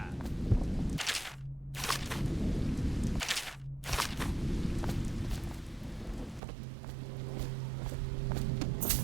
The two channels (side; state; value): left; drops out; at 6.4 s